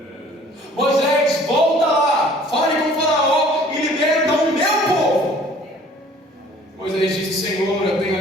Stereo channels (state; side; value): normal; both; correlation 0.53